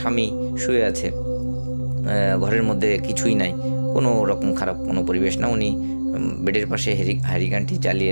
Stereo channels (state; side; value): inverted; both; correlation -1.00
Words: শুয়ে আছে, ঘরের মধ্যে কিছুই নাই, কোনো রকম খারাপ কোনো পরিবেশ না। উনি বেডের পাশে হ্যারিকেনটি জ্বালিয়ে